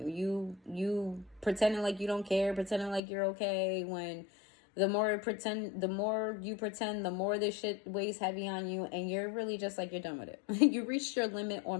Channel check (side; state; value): right; drops out; at 3.0 s